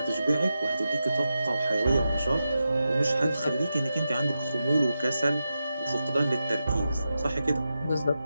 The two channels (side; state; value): both; inverted; correlation -0.90